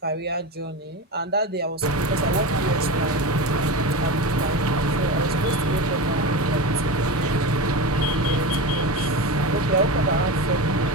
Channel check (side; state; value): both; normal; correlation 0.24